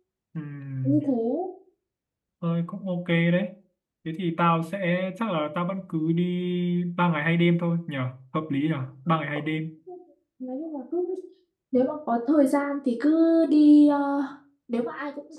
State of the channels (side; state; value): both; identical; correlation 1.00